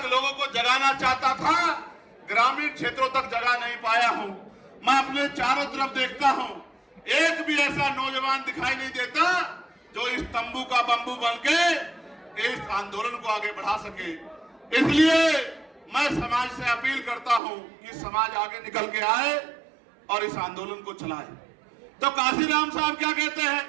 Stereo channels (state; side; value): drops out; left; at 17.4 s